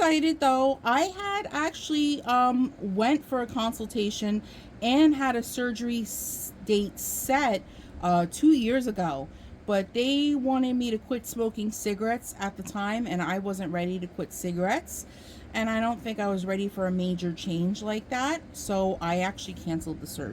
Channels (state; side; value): identical; both; correlation 1.00